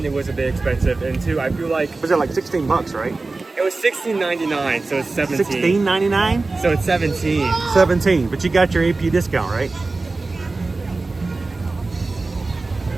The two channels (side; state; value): left; quieter; 3.5 dB